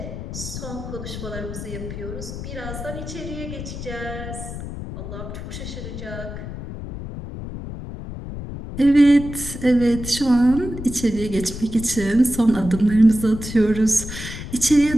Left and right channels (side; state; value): left; noise; rumble, 9 dB below the sound